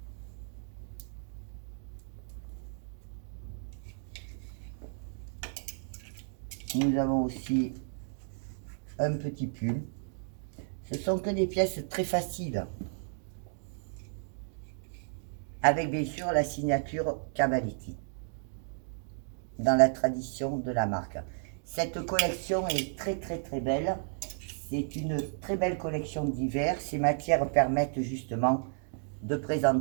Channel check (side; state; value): left; silent; digital silence